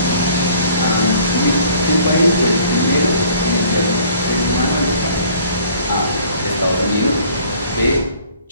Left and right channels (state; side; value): inverted; both; correlation -0.55